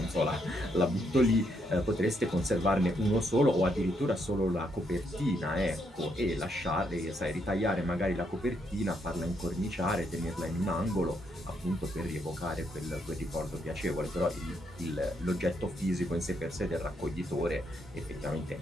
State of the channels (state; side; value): normal; both; correlation 0.76